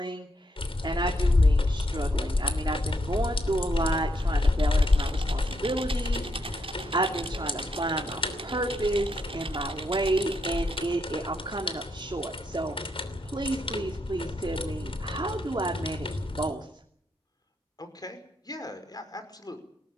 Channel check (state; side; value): normal; both; correlation 0.78